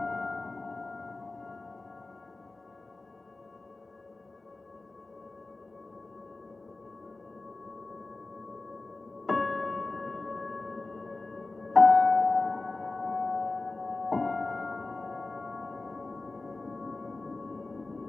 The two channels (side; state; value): right; quieter; 3.4 dB